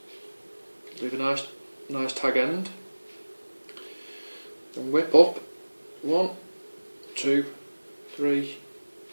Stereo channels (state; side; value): inverted; both; correlation -1.00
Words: Leave a nice tag end. Then whip up 1, 2, 3,